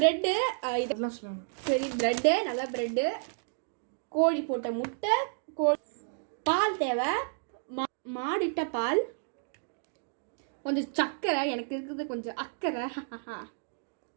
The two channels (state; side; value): silent; left; digital silence